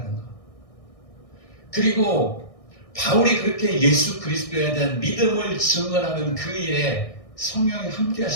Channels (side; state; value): right; late; 1.6 ms